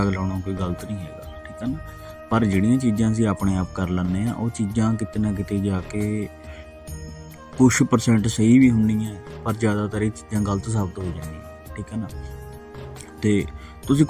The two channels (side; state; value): both; identical; correlation 1.00